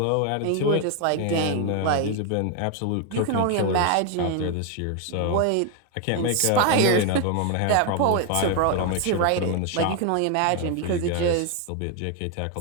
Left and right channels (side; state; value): both; different; correlation 0.01